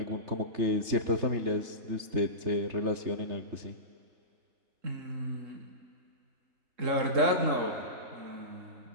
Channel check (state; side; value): late; left; 3.3 ms